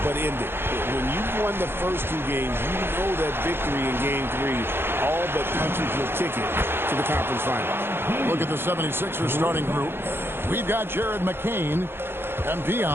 but end it. When you've won the first 2 games, you know that victory in Game 3 all but punches your ticket to the conference final. Look at the 76ers starting group. We've got Jared McCain, MP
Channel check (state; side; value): late; left; 0.11 ms